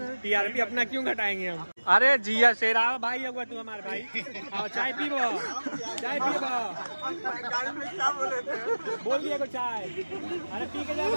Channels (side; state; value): both; inverted; correlation -1.00